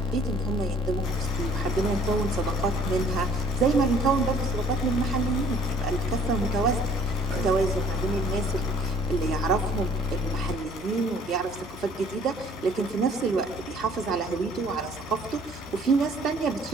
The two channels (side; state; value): both; normal; correlation 0.56